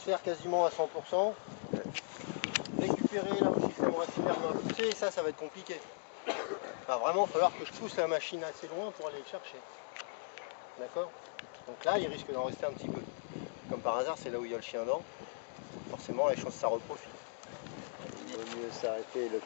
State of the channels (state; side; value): silent; right; digital silence